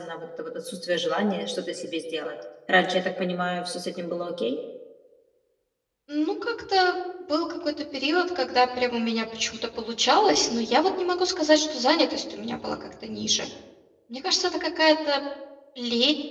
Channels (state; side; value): identical; both; correlation 1.00